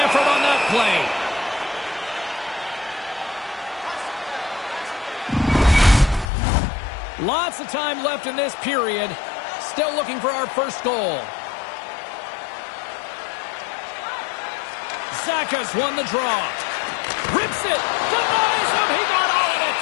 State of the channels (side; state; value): right; drops out; at 6.2 s